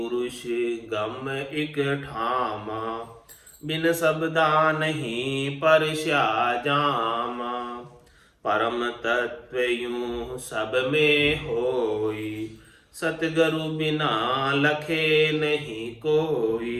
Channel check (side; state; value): both; identical; correlation 1.00